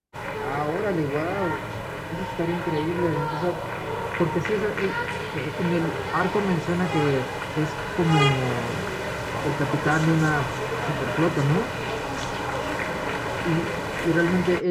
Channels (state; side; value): identical; both; correlation 1.00